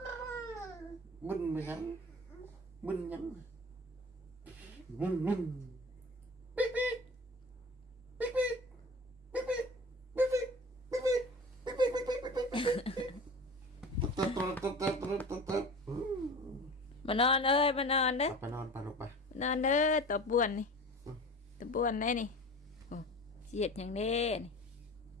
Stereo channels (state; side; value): normal; both; correlation 0.37